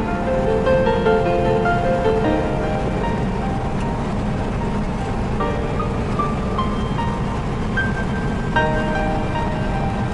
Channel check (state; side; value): identical; both; correlation 1.00